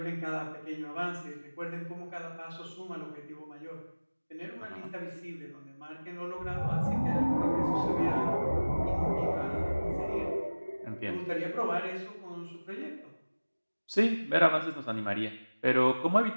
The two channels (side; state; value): both; inverted; correlation -1.00